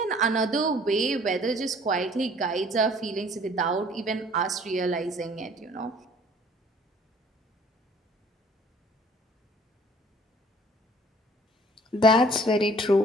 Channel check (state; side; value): normal; both; correlation 0.54